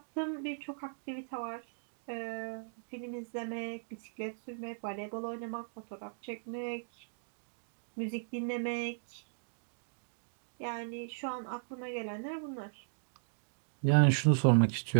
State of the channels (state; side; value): silent; left; digital silence